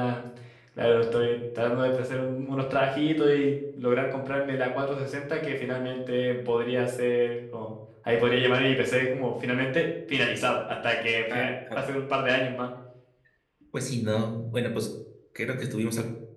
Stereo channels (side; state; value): both; identical; correlation 1.00